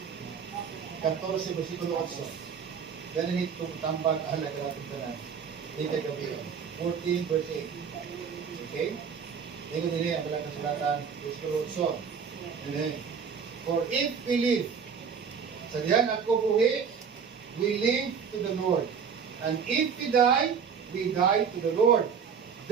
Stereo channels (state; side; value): quieter; left; 6.6 dB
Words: 14, versikulo 8. Ganun itong tambag, alam ka natin ka na. Dito gabi. 14 verse 8. Okay? Ito din ang balang kasulatan. Versikulo 8. And then, for if we live, sa diyan ako buhi, we live to the Lord. And if we die to the Lord.